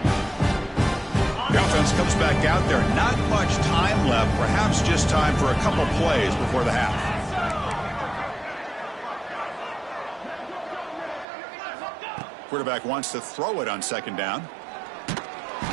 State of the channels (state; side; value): drops out; left; at 11.2 s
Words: The offense comes back out there. Not much time left. Perhaps just time for a couple plays before the half. Quarterback wants to throw it on second down. Oh,